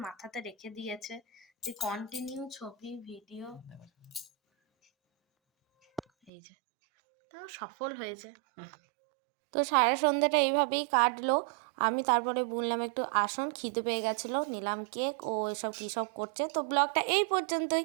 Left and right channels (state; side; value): drops out; left; at 6.3 s